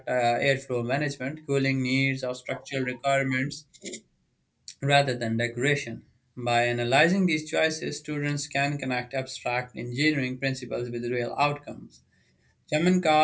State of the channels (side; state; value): both; identical; correlation 1.00